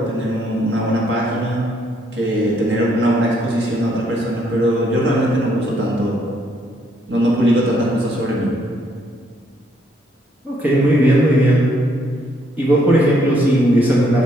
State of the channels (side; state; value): both; normal; correlation 0.70